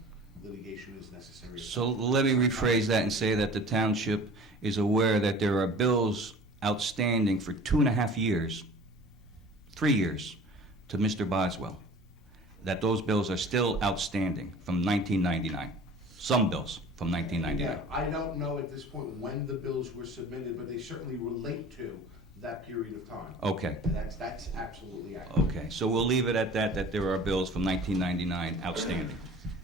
litigation is necessary. So let me rephrase that and say that the township is aware that there are bills outstanding for 2.5 years, 3 years, to Mr. Boswell, that those bills are still outstanding from 1999. Some bills from 1999. Yeah, I don't know at this point when the bills were submitted, but they certainly relate to that period of time. Okay. And that's absolutely accurate. Okay, so we'll leave it at that, that there are bills from 1999 outstanding.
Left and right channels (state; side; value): normal; both; correlation 0.43